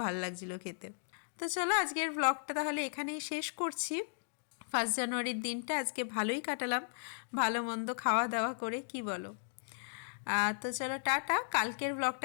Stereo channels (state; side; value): silent; right; digital silence